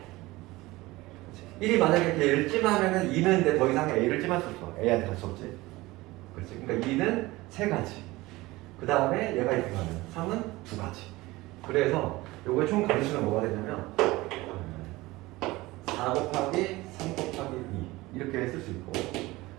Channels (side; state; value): left; quieter; 20.0 dB